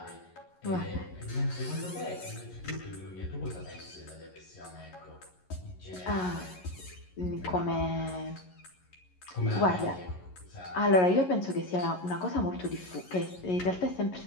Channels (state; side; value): late; right; 11 ms